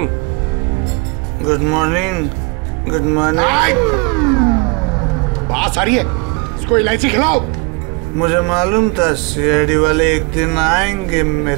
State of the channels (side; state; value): left; quieter; 28.6 dB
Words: Good morning. Good morning. बात आ रही है, इसको इलायची खिलाओ। मुझे मालूम था CID वाले एक दिन आएंगे